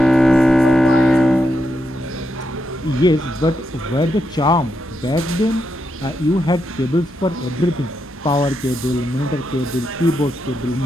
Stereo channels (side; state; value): both; normal; correlation 0.83